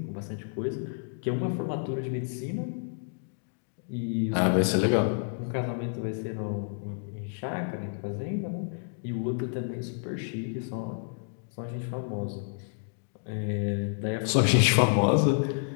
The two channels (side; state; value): right; silent; digital silence